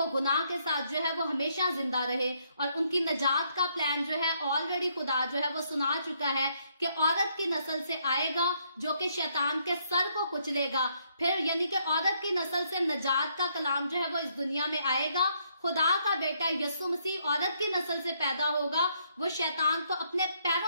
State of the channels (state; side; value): inverted; both; correlation -0.72